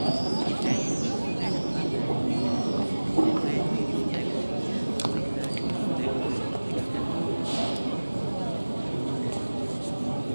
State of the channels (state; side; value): inverted; both; correlation -1.00